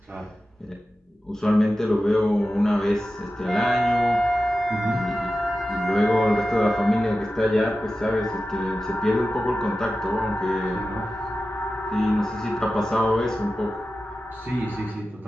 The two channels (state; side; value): normal; both; correlation 0.93